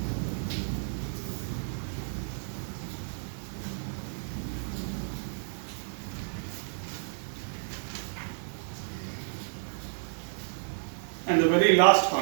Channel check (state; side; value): silent; left; digital silence